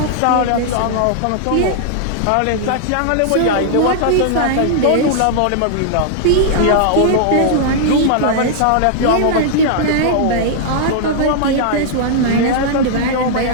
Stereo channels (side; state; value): both; different; correlation -0.01